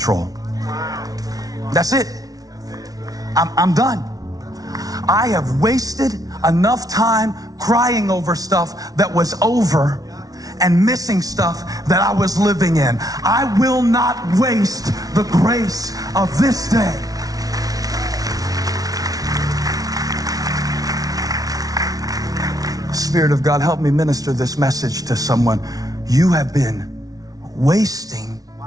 That's it. I'm done. I have wasted enough time crying over stuff that was over and missing stuff that I was living in. I will not waste the grace of this day. Spirit of God, help me minister this message to someone. You have been wasting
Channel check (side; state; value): left; late; 0.18 ms